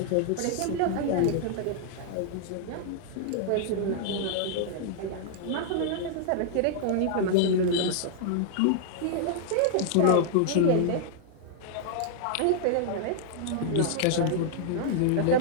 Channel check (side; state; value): both; different; correlation -0.01